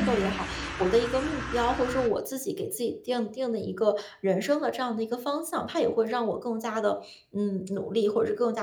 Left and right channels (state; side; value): identical; both; correlation 1.00